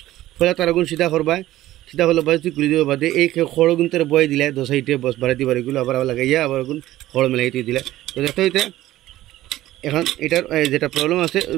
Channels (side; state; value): left; quieter; 15.2 dB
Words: ফলে তার আগুন সিধা করবা, সিধা হলো বাস তুই খুলে দেবো বাদে এই খড় গুনতে বয়ে দিলে 2 সাইডে বস বাড়াইতে পারে, এগুলো আবার লাগাইয়া আবার আগুন খড় মেলাইতে দিলে। তো দেখতে হইতে এখন এটার যেটা প্রবলেম আছে